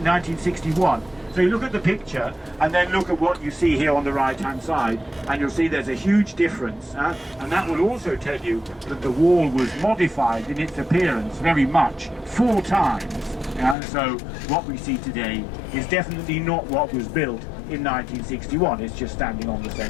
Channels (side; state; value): right; drops out; at 13.8 s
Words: So you look at the picture and then look at what you see here on the right-hand side, and you'll see there's a huge difference. And that will also tell you that the wall was modified in its appearance very much, 4 times. So what we see today is definitely not what was built in 1961. It's just standing on the